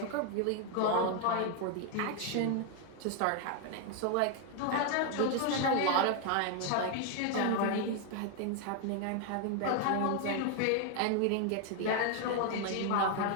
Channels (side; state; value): both; different; correlation 0.00